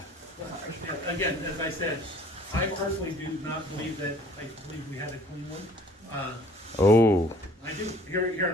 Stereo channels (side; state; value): both; normal; correlation 0.53